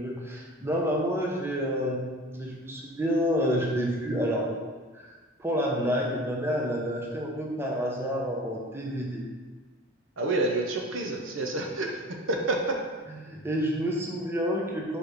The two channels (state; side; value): normal; both; correlation 0.39